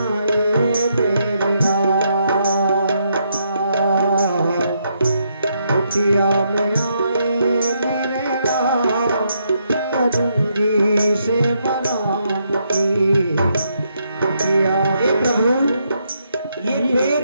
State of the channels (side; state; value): both; inverted; correlation -0.77